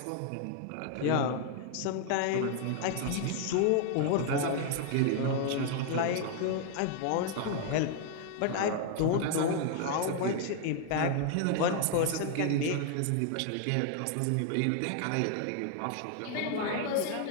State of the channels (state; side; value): different; both; correlation 0.00